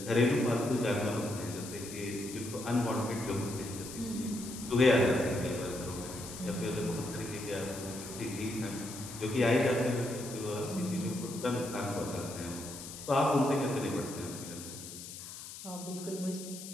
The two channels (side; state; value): left; noise; hiss, 11 dB below the sound